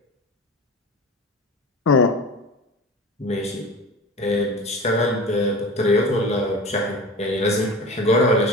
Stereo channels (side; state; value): both; normal; correlation 0.33